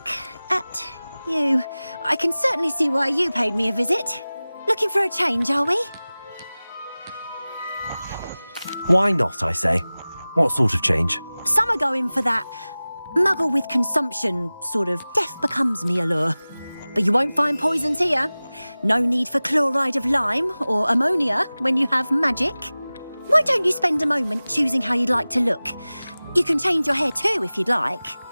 at you. I can certainly see why you paid me a visit. Looking for a change, are we? Why not, I say? What sort of change? Some are going for that muggle with consumption, sort of death becomes me allure. But you won't find poisons here. No need for chloride of lime or ammonia when you have magic. Why don't you spend a moment choosing how you'd like to look? You can change your hair too if you'd like.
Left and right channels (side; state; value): both; inverted; correlation -0.98